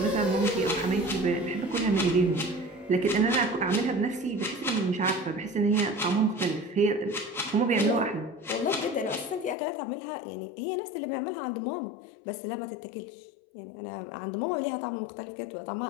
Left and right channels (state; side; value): drops out; right; at 9.6 s